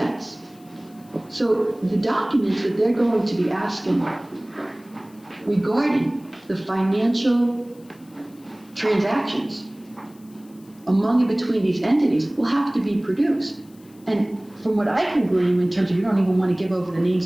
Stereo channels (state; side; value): noise; left; hiss, 28 dB below the sound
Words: So the documents that they're going to be asking regarding the financial transactions among and between these entities will have to be produced. And from what I can glean, in terms of you don't even want to give over the